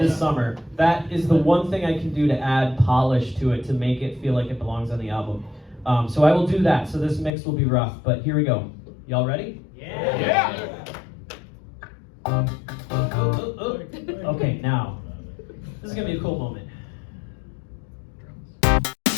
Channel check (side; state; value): right; drops out; at 7.3 s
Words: summer. That is the one thing I can do to add polish to it to make it feel like it belongs on the album. So I will do that. So this mix will be rough, but here we go. Y'all ready? Yeah. Okay, now this is gonna be a cool moment.